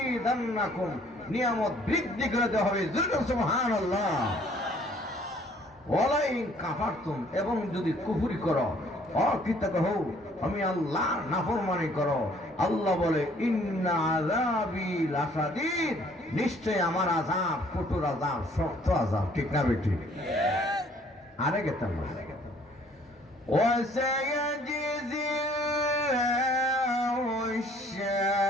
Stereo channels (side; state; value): both; normal; correlation 0.59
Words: নিয়ামত বৃদ্ধি করে দেওয়া হবে। সুবহানাল্লাহ। ওয়ালাইন কাফারতুম, এবং যদি কুফরি করো, অকৃতজ্ঞ হও, আমি আল্লাহর নাফরমানি করো, আল্লাহ বলে ইন্না আযাবি লাশাদীদ, নিশ্চয় আমার আযাব কঠোর আযাব, শক্ত আযাব। ঠিক না বেটি? আরে গেতাম وسيجزي الله